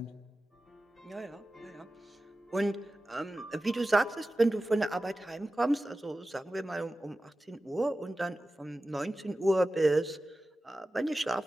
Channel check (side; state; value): both; normal; correlation 0.95